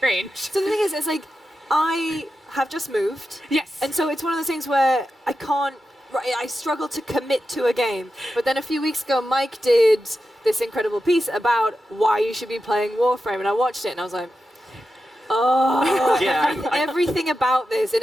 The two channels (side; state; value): both; normal; correlation 0.90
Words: So the thing is, it's like, I have just moved. Yes. And so it's one of those things where I struggle to commit to a game. But then a few weeks ago, Mike did this incredible piece about why you should be playing Warframe, and I watched it, and I was like, oh, yeah, everything about this and